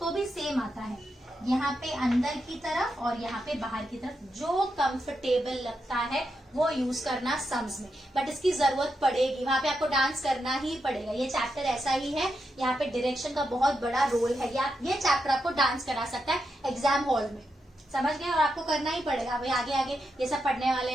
भी सेम आता है। यहाँ पे अंदर की तरफ और यहाँ पे बाहर की तरफ, जो कंफर्टेबल लगता है वो यूज करना सम्स में, बट इसकी जरूरत पड़ेगी, वहां पे आपको डांस करना ही पड़ेगा। ये चैप्टर ऐसा ही है, यहाँ पे डायरेक्शन का बहुत बड़ा रोल है। ये चैप्टर आपको डांस करा सकता है एग्जाम हॉल में, समझ गए, और आपको करना ही पड़ेगा भाई। आगे आगे ये सब पढ़ने वाले,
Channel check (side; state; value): both; normal; correlation 0.85